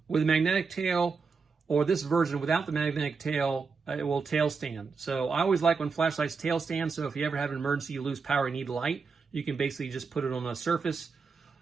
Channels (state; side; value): quieter; left; 5.0 dB